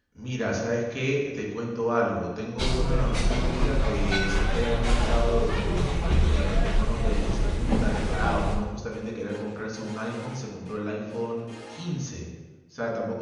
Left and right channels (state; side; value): identical; both; correlation 1.00